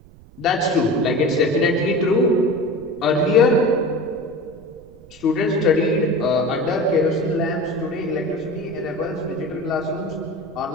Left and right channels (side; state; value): right; noise; rumble, 23 dB below the sound